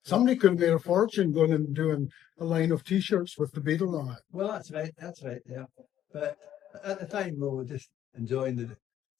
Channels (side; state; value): right; quieter; 11.2 dB